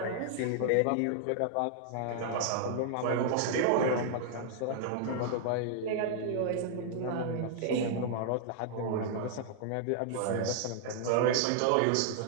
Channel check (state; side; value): different; both; correlation -0.01